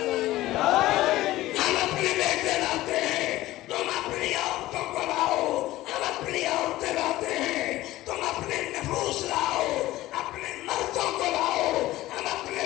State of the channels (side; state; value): right; quieter; 16.5 dB